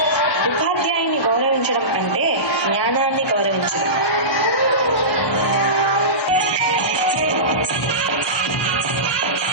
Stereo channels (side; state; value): right; late; 1.1 ms